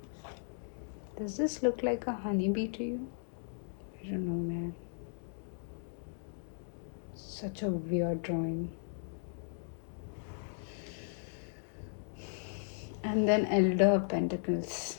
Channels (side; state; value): right; silent; digital silence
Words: Does this look like a honeybee to you? I don't know, man. Such a weird drawing. And then Elder of Pentacles.